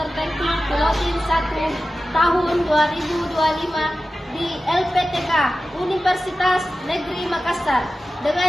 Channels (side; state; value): both; normal; correlation 0.94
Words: Pilotin 1 tahun 2025 di LPTK Universitas Negeri Makassar